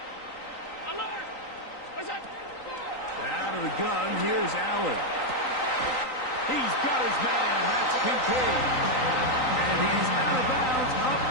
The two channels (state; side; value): late; right; 3.9 ms